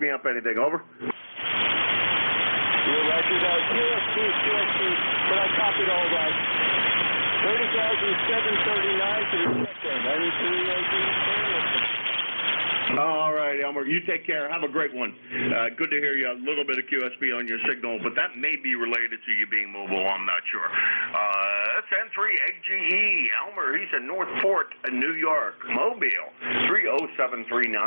up anything. Over. You're right, you got QSC, but I copied all that. 30,739 to the check-in. All right, Elmer, you take care. Have a great one. Good to hear you. A little bit of QSB on your signal, but that may be related to you being mobile. I'm not sure. That's N3 AGE. Elmer, he's in Northport, New York. Mobile,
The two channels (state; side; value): inverted; both; correlation -1.00